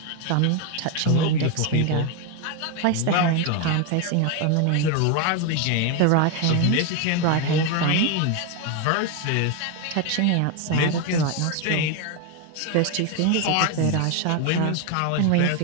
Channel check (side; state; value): both; different; correlation 0.02